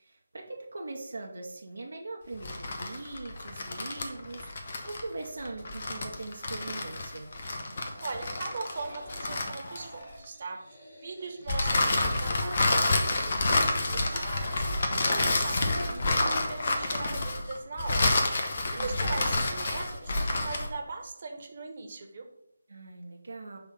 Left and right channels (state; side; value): inverted; both; correlation -0.88